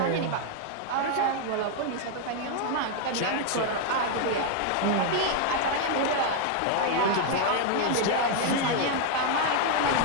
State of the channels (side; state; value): both; different; correlation 0.00